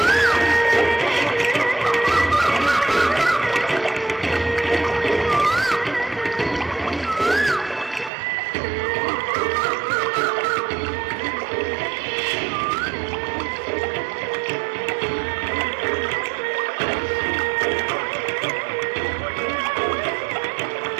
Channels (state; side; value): drops out; left; at 8.1 s